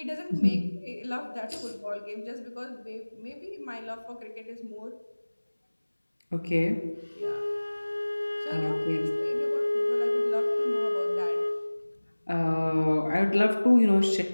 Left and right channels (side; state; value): both; inverted; correlation -1.00